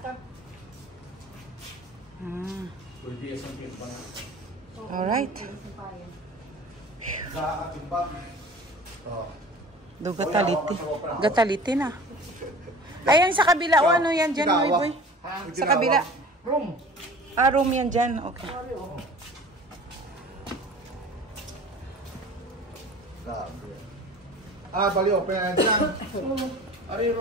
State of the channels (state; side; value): normal; both; correlation 0.42